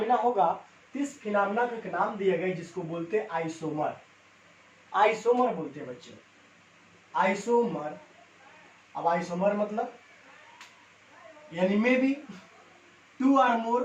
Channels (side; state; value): both; identical; correlation 1.00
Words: होगा तो इस फिनोमेना को एक नाम दिया गया जिसको बोलते हैं आइसोमर. आइसोमर बोलते हैं बच्चों, आइसोमर. अब आइसोमर मतलब यानी में भी two or